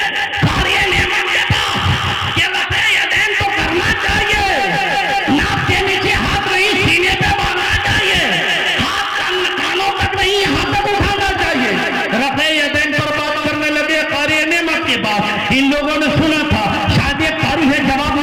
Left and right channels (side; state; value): both; identical; correlation 1.00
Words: कार्य नेमत के पास ये वैसे यदेन तो करना चाहिए, नाक के नीचे हाथ नहीं सीने पे बांधना चाहिए, हाथ कानों तक नहीं यहाँ तक उठाना चाहिए। रफ़े यदैन पर बात करने लगे कार्य नेमत के बाद। इन लोगों ने सुना था शायद एक कारी है जवाब